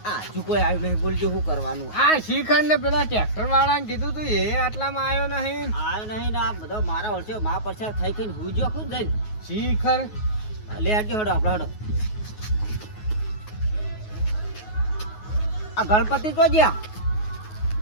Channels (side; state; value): right; late; 9.4 ms